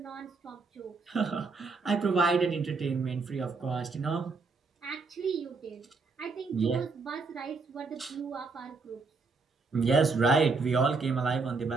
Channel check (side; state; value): left; quieter; 4.3 dB